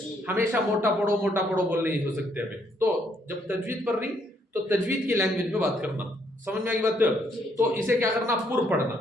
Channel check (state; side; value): normal; both; correlation 0.71